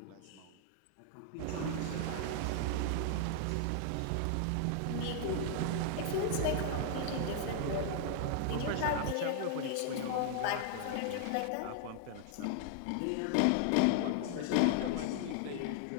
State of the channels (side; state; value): both; different; correlation 0.00